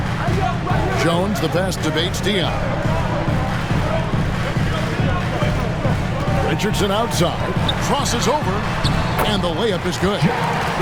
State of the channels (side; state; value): both; identical; correlation 1.00